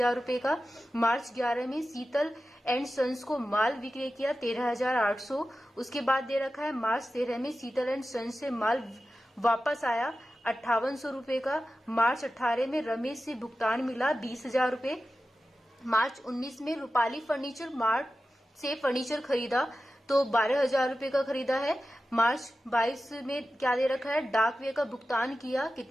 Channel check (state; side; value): normal; both; correlation 0.93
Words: रुपए का। मार्च 11 में शीतल एंड सन्स को माल विक्रय किया 13,800। उसके बाद दे रखा है मार्च 13 में शीतल एंड सन्स से माल वापस आया 5800 रुपए का। मार्च 18 में रमेश से भुगतान मिला 20,000 रुपए। मार्च 19 में रूपाली फर्नीचर मार्ट से फर्नीचर खरीदा तो 12,000 रुपए का खरीदा है। मार्च 22 में क्या दे रखा है? डाक व्यय का भुगतान किया